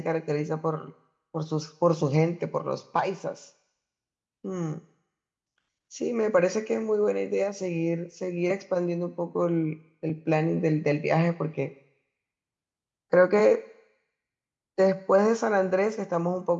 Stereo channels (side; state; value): both; identical; correlation 1.00